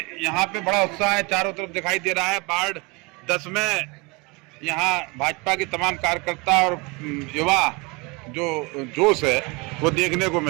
यहाँ पे बड़ा उत्साह है, चारों तरफ दिखाई दे रहा है। वार्ड 10 में यहाँ भाजपा के तमाम कार्यकर्ता और युवा जो जोश है वो देखने को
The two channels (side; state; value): left; quieter; 27.0 dB